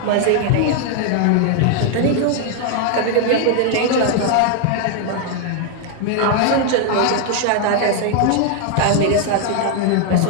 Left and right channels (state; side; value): different; both; correlation 0.00